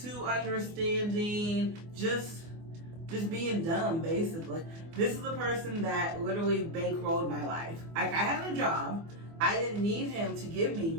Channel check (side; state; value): left; late; 24 ms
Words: understanding, just being dumb, basically. This is the person that literally bankrolled my life. Like, I had a job. I didn't need him to give me